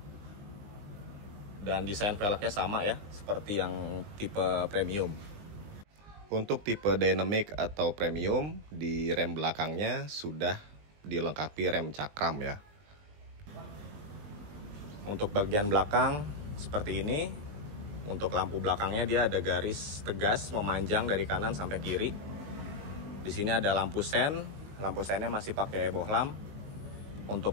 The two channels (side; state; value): left; late; 20 ms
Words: Dan desain velgnya sama ya, seperti yang tipe Premium. Untuk tipe Dynamic atau Premium, di rem belakangnya sudah dilengkapi rem cakram ya. Untuk bagian belakang seperti ini. Untuk lampu belakangnya dia ada garis tegas memanjang dari kanan sampai kiri. Di sini ada lampu sen. Lampu sennya masih pakai bohlam. Untuk